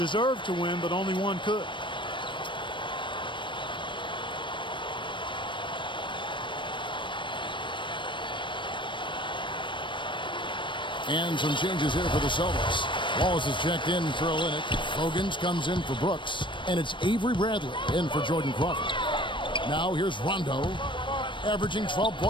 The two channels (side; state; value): right; late; 0.24 ms